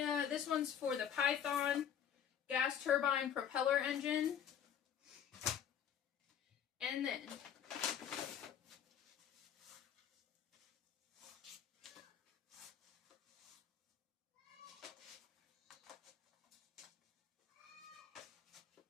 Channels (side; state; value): right; quieter; 8.9 dB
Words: This one's for the Python gas turbine propeller engine. And then